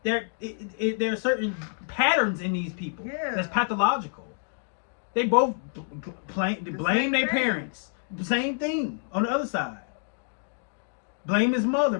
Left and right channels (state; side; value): silent; right; digital silence